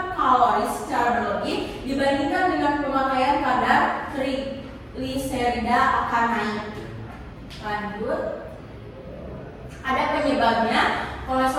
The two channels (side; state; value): both; identical; correlation 1.00